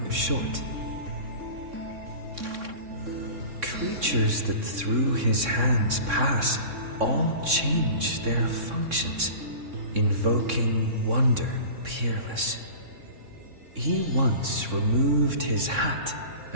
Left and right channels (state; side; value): late; left; 3.6 ms